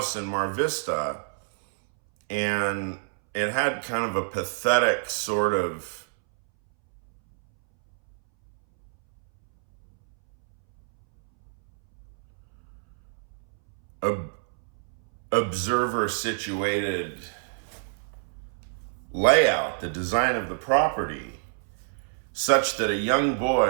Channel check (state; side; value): silent; left; 60 dB below the other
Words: in Mar Vista, and it had kind of a pathetic sort of observer situated layout, the design of the property, such that a young